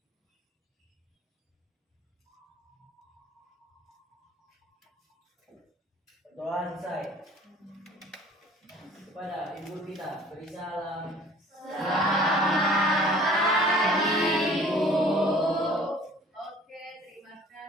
Doa selesai. Kepada ibu kita beri salam. Oke, terima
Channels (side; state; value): both; normal; correlation 0.51